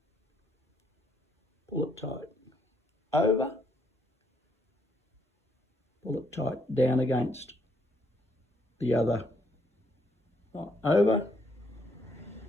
pull it tight, over, pull it tight, down against the other, over,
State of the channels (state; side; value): normal; both; correlation 0.72